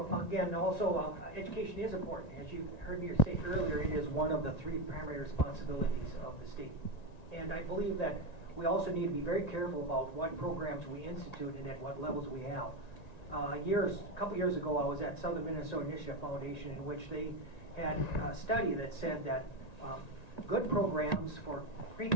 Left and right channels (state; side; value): late; right; 1.9 ms